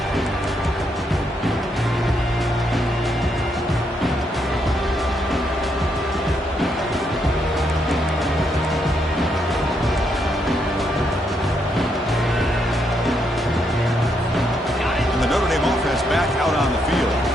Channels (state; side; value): normal; both; correlation 0.77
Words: And the Notre Dame offense back out on the field.